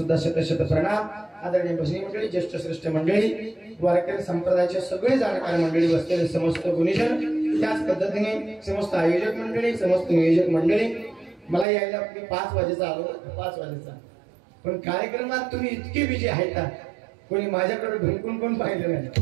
शत प्रणाम. आदरणीय भजनी मंडळी, ज्येष्ठ श्रेष्ठ मंडळी, वारकरी संप्रदायाचे सगळे जाणकार मंडळी, बसलेले समस्त गुणीजन, त्याच पद्धतीने समस्त आयोजक मंडळी, समस्त नियोजक मंडळी. मला यायला 5 वाजेचा आलो, 5 वाजेचा, पण कार्यक्रमात तुम्ही इतके बिजी आहेत का कोणी माझ्याकडे ढुंकून पण पाहिलं नाही.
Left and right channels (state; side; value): drops out; left; at 11.7 s